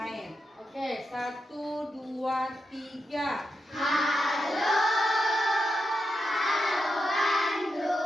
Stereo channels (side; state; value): both; normal; correlation 0.87